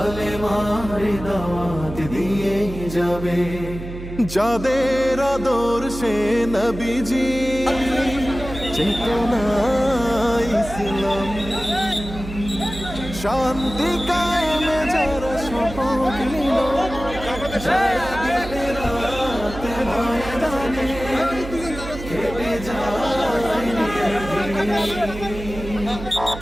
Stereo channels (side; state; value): right; noise; hum, 10 dB below the sound